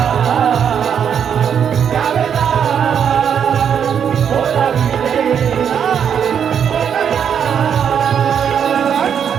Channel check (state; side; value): quieter; left; 8.0 dB